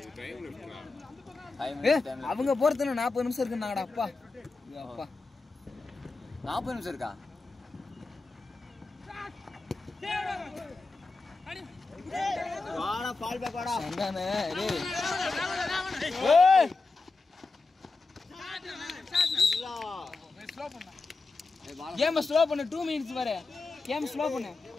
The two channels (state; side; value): quieter; right; 3.8 dB